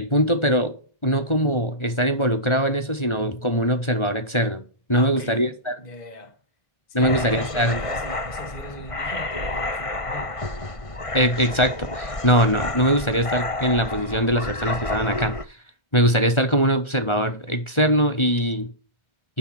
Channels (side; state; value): right; late; 1.4 ms